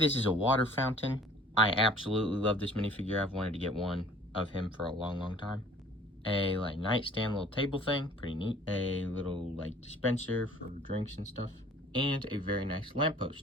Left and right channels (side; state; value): both; normal; correlation 0.51